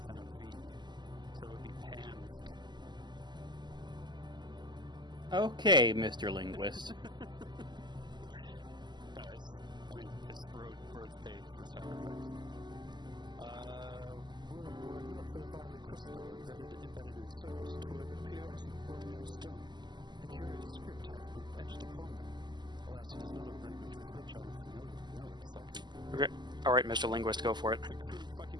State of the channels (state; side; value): late; left; 0.21 ms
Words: V. So it would be pan. Okay, Mr. Linguist. Guys, I mean, it's road paid for sacrifice. We're not for the bodily crystal embedded in surface to appear as an ordinary stone. A curious script has been etched upon them. Alas, it is not a language with which I am familiar. No, it's like a Okay. Alright, Mr. Linguist, go for it.